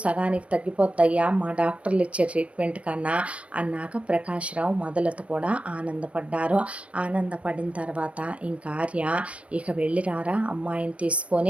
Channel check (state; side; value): late; left; 0.063 ms